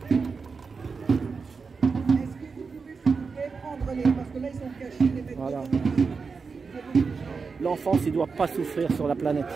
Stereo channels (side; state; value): left; quieter; 4.9 dB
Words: prenez, parce que là, ils sont cachés, les mecs. Voilà. L'enfance, il ne doit pas souffrir sur la planète.